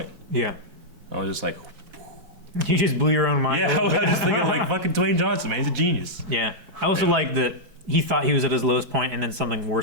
Yeah. I was just like, You just blew your own mind. yeah, I was just thinking like fucking Dwayne Johnson, man, he's a genius. Yeah. I also like that he thought he was at his lowest point and then something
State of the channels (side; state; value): left; late; 4.6 ms